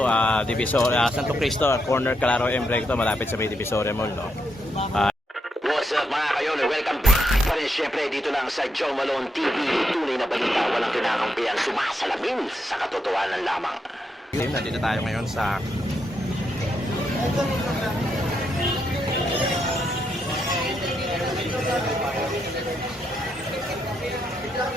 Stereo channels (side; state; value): both; normal; correlation 0.80